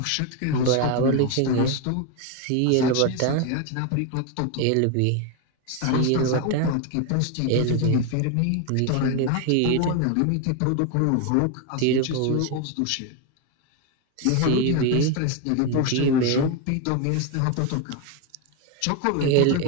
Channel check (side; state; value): both; different; correlation 0.01